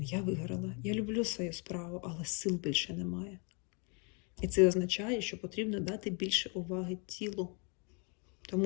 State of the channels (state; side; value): quieter; right; 34.9 dB